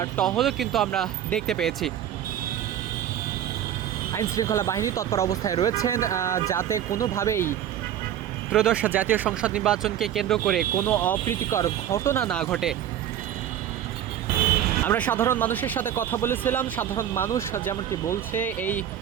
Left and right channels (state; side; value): quieter; left; 10.6 dB